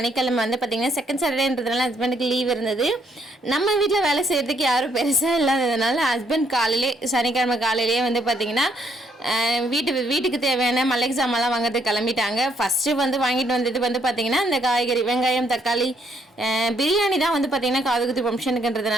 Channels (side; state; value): both; normal; correlation 0.70